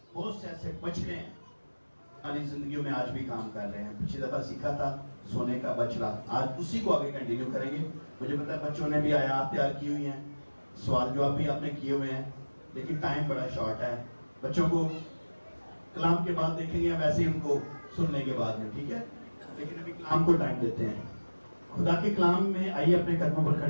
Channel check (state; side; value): inverted; both; correlation -1.00